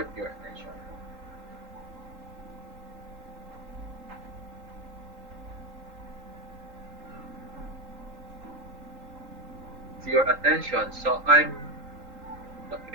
your attention. It's your attention. So I'm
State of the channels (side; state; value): left; late; 3.8 ms